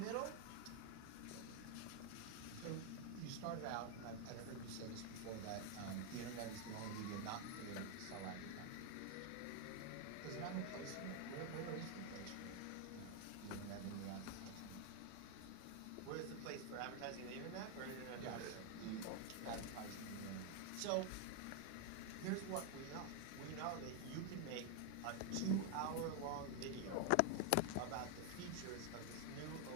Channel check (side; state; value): both; different; correlation 0.01